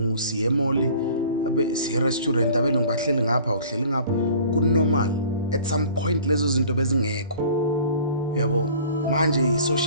siye emall, siye restaurant, abelungu bahleli ngapha, uhleli ngapha, kunormal. At some point lezo zinto bezingekho, uyabo. Manje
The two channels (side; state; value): both; inverted; correlation -0.48